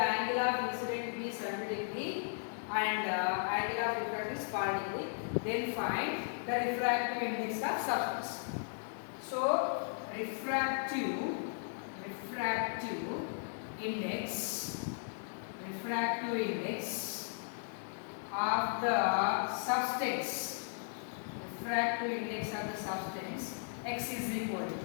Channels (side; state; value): right; silent; digital silence